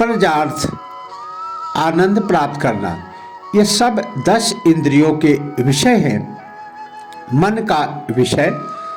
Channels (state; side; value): identical; both; correlation 1.00